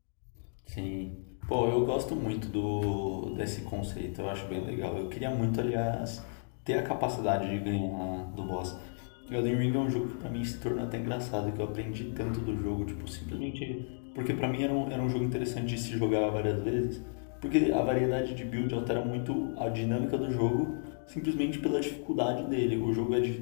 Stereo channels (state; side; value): silent; right; digital silence